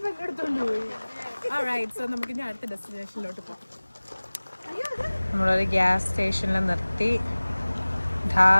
Alright, so നമുക്ക് ഇനി അടുത്ത ഡെസ്റ്റിനേഷനിലോട്ട് പോകാം. നമ്മളൊരു ഗ്യാസ് സ്റ്റേഷനിൽ നിർത്തി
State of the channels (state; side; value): inverted; both; correlation -1.00